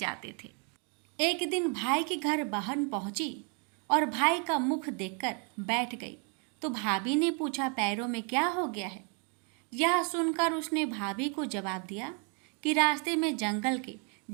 थे। एक दिन भाई के घर बहन पहुंची और भाई का मुख देखकर बैठ गई तो भाभी ने पूछा, पैरों में क्या हो गया है? यह सुनकर उसने भाभी को जवाब दिया कि रास्ते में जंगल के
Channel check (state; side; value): quieter; left; 37.5 dB